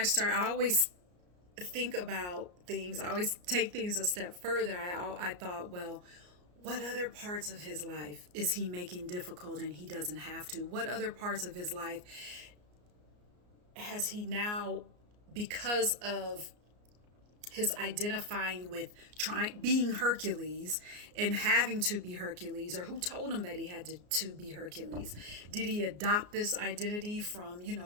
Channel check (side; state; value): left; late; 33 ms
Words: always think about things. I always take things a step further. I thought, well, what other parts of his life is he making difficult and he doesn't have to? What other parts of his life has he now, because of his identifying with being Hercules and having to be Hercules, or who told him that he had to be Hercules? Did he adopt this identity from,